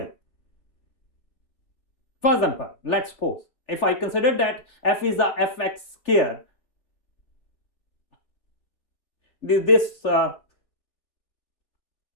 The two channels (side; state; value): right; late; 3.4 ms